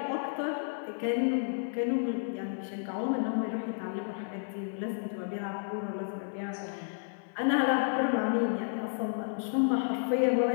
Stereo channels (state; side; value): silent; right; 57 dB below the other